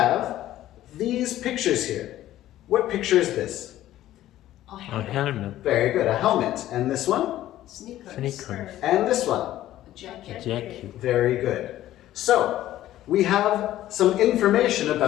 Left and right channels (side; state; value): right; quieter; 13.7 dB